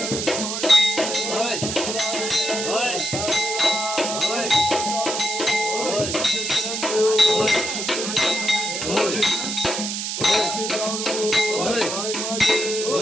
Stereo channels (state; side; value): noise; right; hiss, 3 dB below the sound